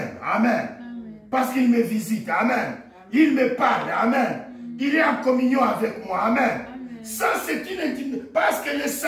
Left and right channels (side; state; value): both; identical; correlation 1.00